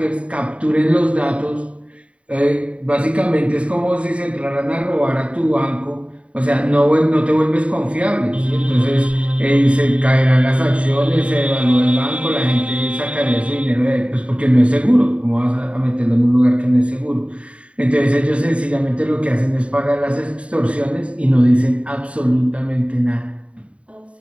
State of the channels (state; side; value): late; left; 0.063 ms